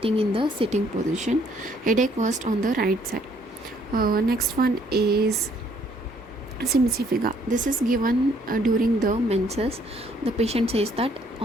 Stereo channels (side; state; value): both; normal; correlation 0.65